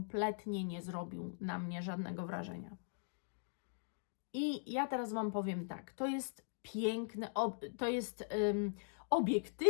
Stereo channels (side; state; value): right; silent; digital silence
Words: nie zrobił na mnie żadnego wrażenia. I ja teraz Wam powiem tak, to jest piękny, to jest